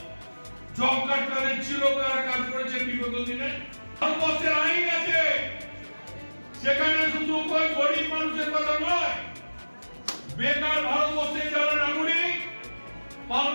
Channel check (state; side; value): inverted; both; correlation -1.00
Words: জব কার্ড কাদের ছিল, কারা কাজ করেছে বিগত দিনে? ভারতবর্ষের আইন আছে, সেখানে শুধু কোন গরিব মানুষের কথা নয়, বেকার ভারতবর্ষে যারা নাগরিক,